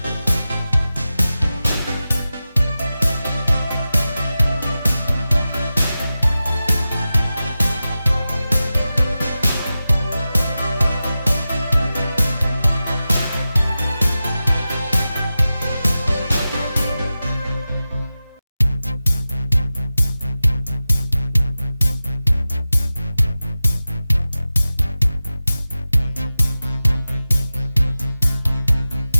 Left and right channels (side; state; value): both; inverted; correlation -0.95